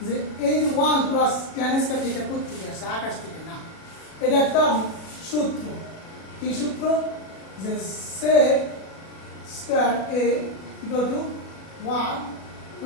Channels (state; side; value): late; right; 37 ms